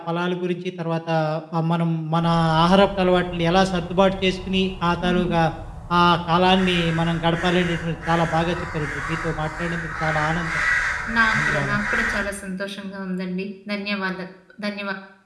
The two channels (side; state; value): both; identical; correlation 1.00